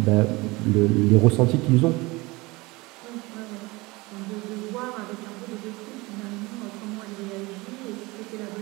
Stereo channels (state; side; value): quieter; left; 23.0 dB